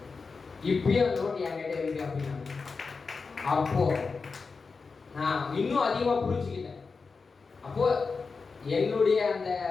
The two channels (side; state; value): right; quieter; 4.6 dB